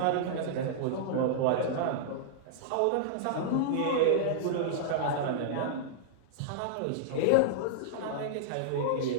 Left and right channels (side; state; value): both; different; correlation -0.02